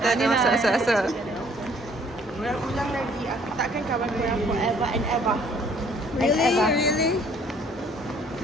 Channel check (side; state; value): both; normal; correlation 0.60